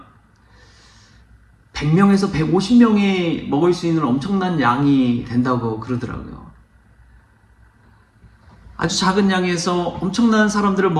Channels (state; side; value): identical; both; correlation 1.00